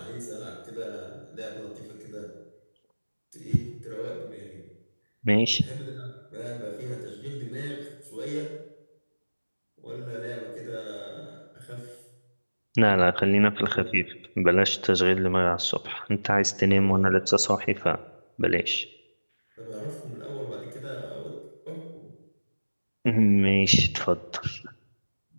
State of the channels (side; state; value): both; inverted; correlation -1.00